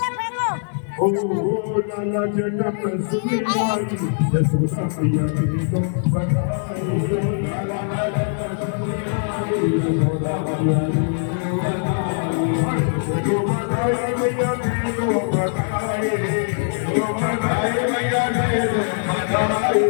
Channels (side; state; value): right; silent; 55 dB below the other